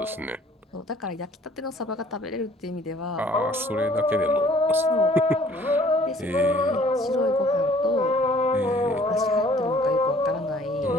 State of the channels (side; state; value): both; normal; correlation 0.55